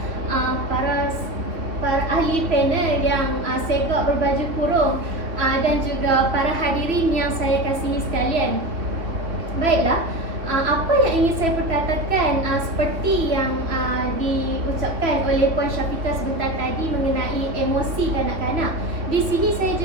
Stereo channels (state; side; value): late; left; 2.8 ms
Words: para ahli panel yang segak berbaju kurung dan juga para hadirin yang saya kasihi sekalian. Baiklah, apa yang ingin saya perkatakan seperti yang diucapkan oleh Puan Syafiqah sebentar tadi mengenai emosi kanak-kanak. Di sini saya